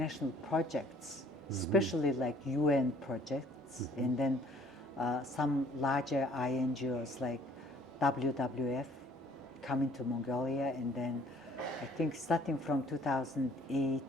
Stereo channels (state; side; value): normal; both; correlation 0.57